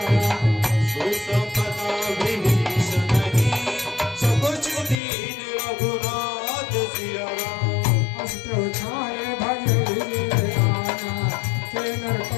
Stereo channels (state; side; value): drops out; right; at 5.0 s